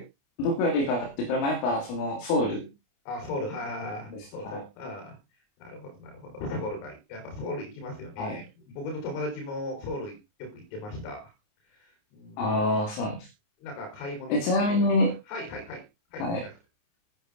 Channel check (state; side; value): late; right; 29 ms